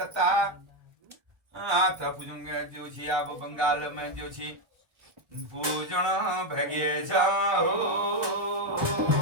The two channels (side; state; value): left; late; 1.3 ms